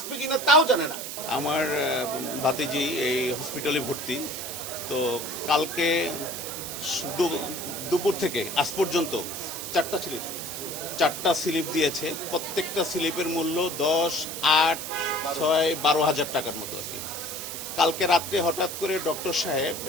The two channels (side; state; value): right; noise; hiss, 7 dB below the sound